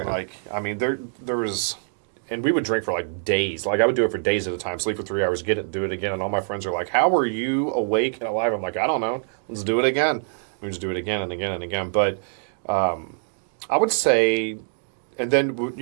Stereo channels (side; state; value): left; silent; digital silence